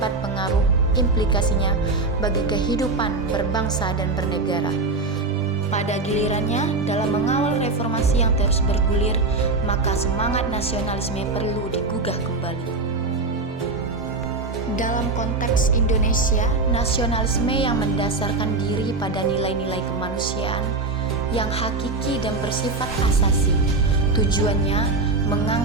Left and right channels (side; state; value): left; quieter; 3.5 dB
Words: pengaruh implikasinya bagi kehidupan berbangsa dan bernegara. Pada gilirannya, dalam mengawal reformasi yang terus bergulir, maka semangat nasionalisme perlu digugah kembali. Dalam konteks Indonesia, nasionalisme yang mendasarkan diri pada nilai-nilai kemanusiaan yang hakiki dan bersifat asasi. Tujuannya